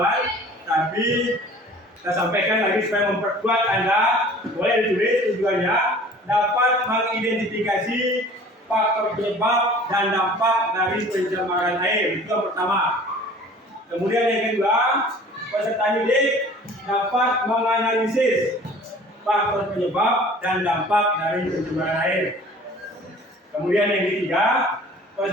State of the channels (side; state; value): both; normal; correlation 0.47